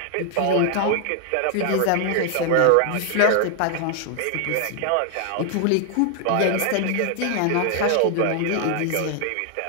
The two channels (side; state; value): both; different; correlation 0.00